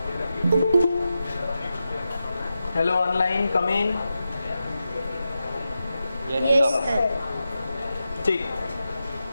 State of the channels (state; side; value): inverted; both; correlation -0.90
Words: Hello online, come in. Yes sir. ठीक।